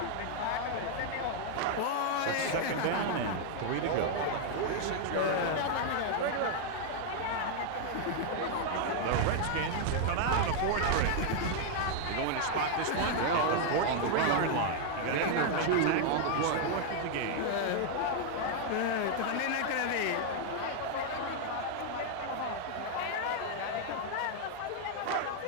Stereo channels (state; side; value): different; both; correlation 0.00